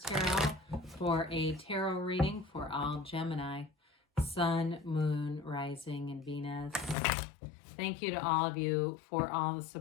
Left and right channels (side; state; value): right; drops out; at 7.0 s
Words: for a tarot reading for all Gemini, Sun, Moon, Rising, and Venus. Thank you to all of you for all the